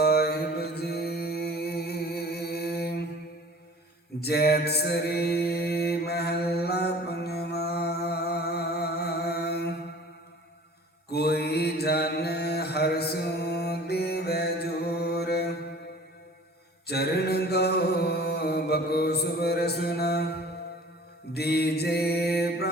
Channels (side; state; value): both; normal; correlation 0.46